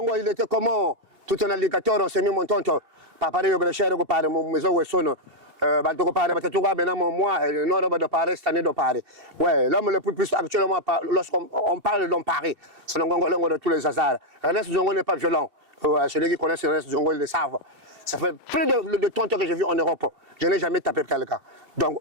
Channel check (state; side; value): late; left; 2.7 ms